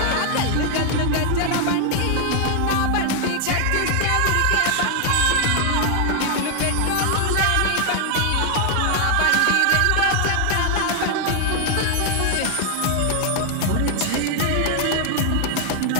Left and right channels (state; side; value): different; both; correlation 0.00